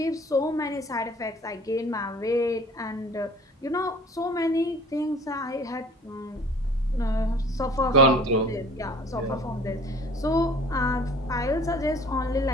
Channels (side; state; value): both; normal; correlation 0.48